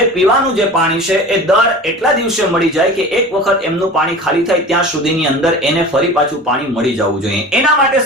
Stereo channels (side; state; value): both; normal; correlation 0.37